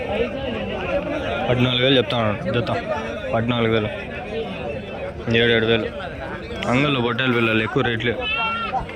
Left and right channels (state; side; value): identical; both; correlation 1.00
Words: 14,000 చెప్తాను జత 14,000 7,000 అంగళ్ళు పొట్టేలు పిల్లలు ఎక్కువ రేట్లు